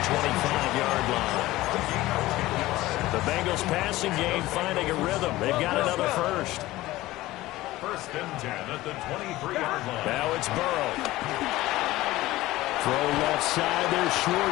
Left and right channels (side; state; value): right; quieter; 17.4 dB